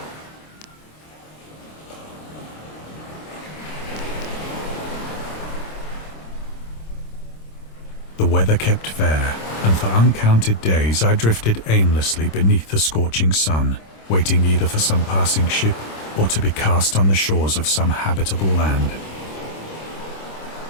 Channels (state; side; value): late; right; 26 ms